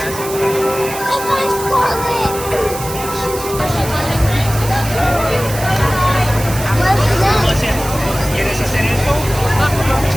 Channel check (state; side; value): noise; right; hiss, 10 dB below the sound